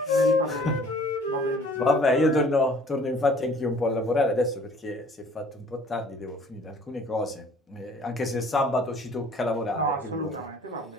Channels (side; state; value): both; normal; correlation 0.54